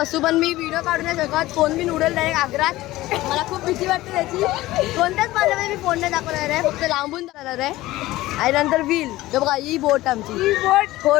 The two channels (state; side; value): quieter; right; 17.3 dB